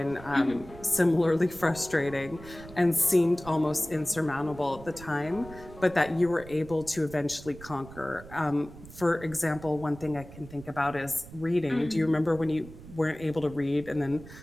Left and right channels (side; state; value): right; noise; rumble, 17 dB below the sound